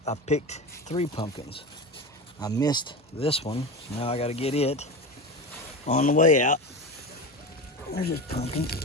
picked 3 pumpkins. I missed this one, so now I got to get it on the way out. There's just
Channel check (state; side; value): normal; both; correlation 0.25